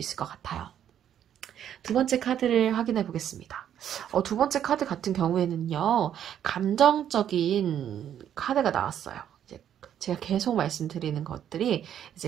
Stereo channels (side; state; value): left; quieter; 9.9 dB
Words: 것 같아요. 두 번째 카드를 확인해 보겠습니다. 두 번째 카드 같은 경우에는요, 감정적인 카드가 나왔어요. 제가 계속 말씀드리는 것들이